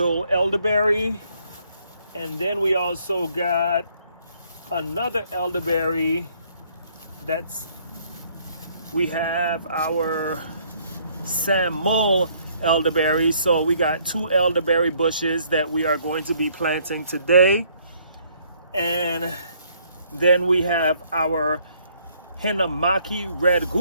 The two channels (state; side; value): inverted; both; correlation -0.65